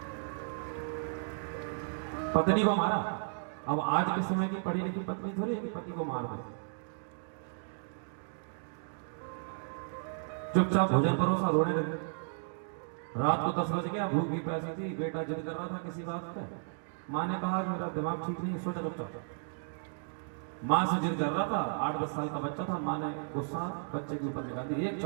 पत्नी को मारा। अब आज के समय की पढ़ी लिखी पत्नी थोड़ी है कि पति को मार दे। चुपचाप भोजन परोसा, रोने लगे। रात को 10 बज गया, भूख भी प्यासी थी, बेटा जिद कर रहा था किसी बात पे। माँ ने कहा मेरा दिमाग ठीक नहीं, सो जा चुपचाप। माँ से जिद कर रहा था, 8-10 साल का बच्चा था। माँ ने गुस्सा बच्चे के ऊपर निकाल दी, एक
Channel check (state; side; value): silent; left; digital silence